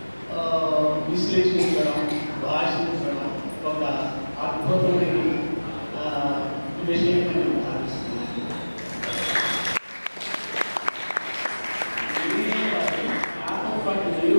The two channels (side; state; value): both; inverted; correlation -1.00